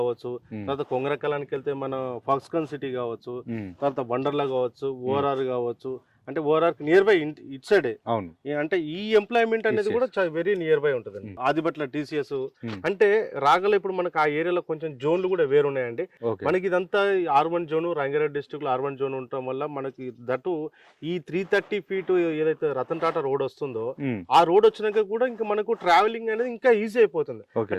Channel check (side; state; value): both; identical; correlation 1.00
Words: తర్వాత కొంగరకలానికి వెళ్తే మన ఫాక్స్కాన్ సిటీ కావచ్చు, తర్వాత వండర్లా కావచ్చు, ORR కావచ్చు, అంటే ORR near by it side. అవును. అంటే ఈ ఎంప్లాయ్మెంట్ అనేది కూడా వెరీ నియర్ బై ఉంటుందండి. ఆదిబట్ల TCS అంటే రాగల ఇప్పుడు మనకు ఆ ఏరియాలో కొంచెం జోన్లు కూడా వేరు ఉన్నాయండి. మనకి ఇదంతా R1 జోన్, రంగారెడ్డి డిస్ట్రిక్ట్ లో R1 జోన్ ఉండటం వల్ల మనకి దట్టు ఈ 330 feet ఏదైతే రతన్ టాటా రోడ్ వస్తుందో ఆ రోడ్ వచ్చినాక కూడా ఇంకా మనకు ట్రావెలింగ్ అనేది ఇంకా ఈజీ అయిపోతుంది.